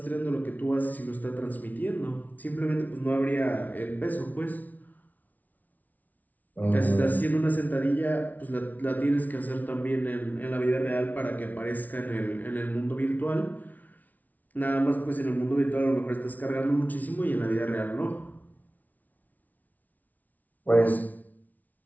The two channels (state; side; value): late; right; 0.076 ms